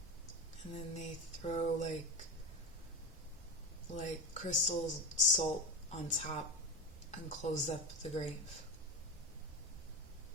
And then they throw like crystal salt on top and close up the grave.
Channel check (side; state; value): both; normal; correlation 0.20